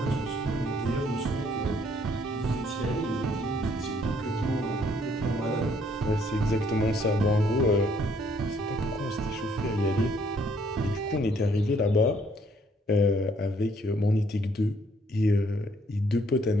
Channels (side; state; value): both; normal; correlation 0.66